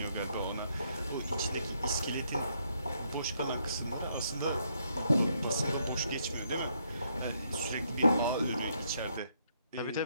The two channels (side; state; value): both; inverted; correlation -0.73